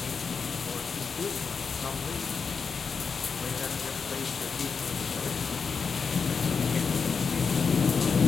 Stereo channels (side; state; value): right; quieter; 5.5 dB